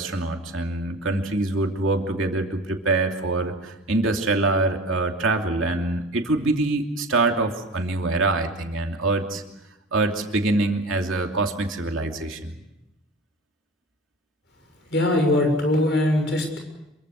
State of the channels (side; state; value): both; normal; correlation 0.37